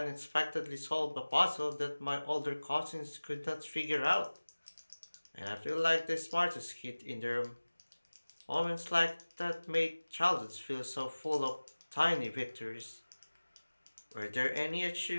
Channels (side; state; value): both; inverted; correlation -1.00